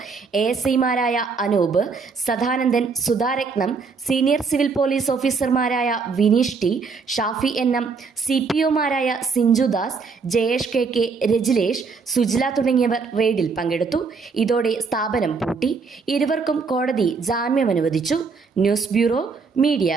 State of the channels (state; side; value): quieter; left; 4.9 dB